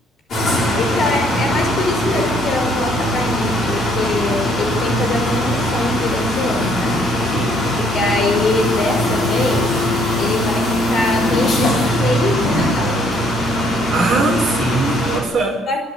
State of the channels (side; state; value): both; normal; correlation 0.65